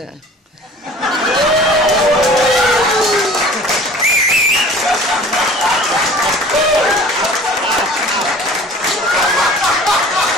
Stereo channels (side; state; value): both; normal; correlation 0.45